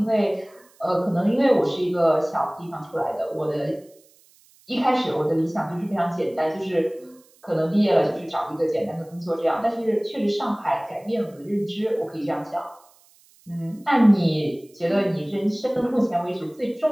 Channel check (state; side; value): noise; right; hiss, 30 dB below the sound